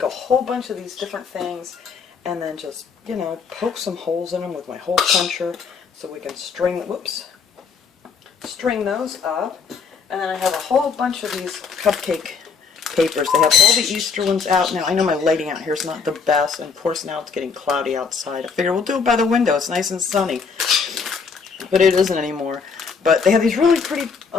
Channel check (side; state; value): right; quieter; 5.5 dB